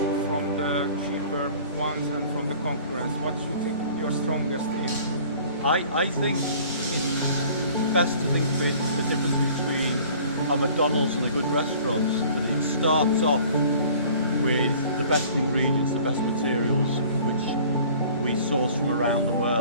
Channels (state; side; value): inverted; both; correlation -0.49